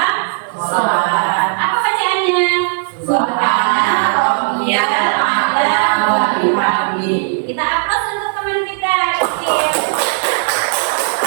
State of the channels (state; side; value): silent; left; 55 dB below the other